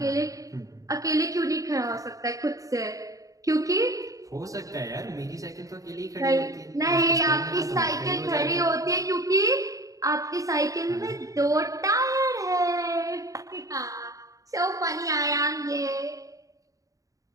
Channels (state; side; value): late; left; 0.16 ms